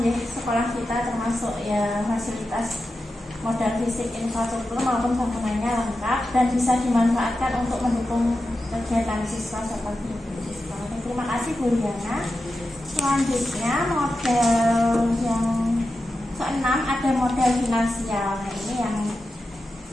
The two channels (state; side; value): normal; both; correlation 0.91